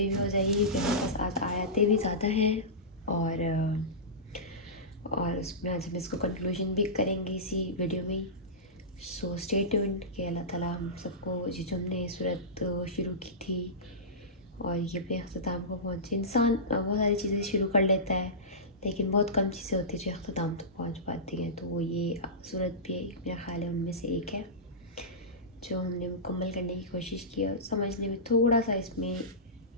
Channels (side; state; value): both; normal; correlation -0.19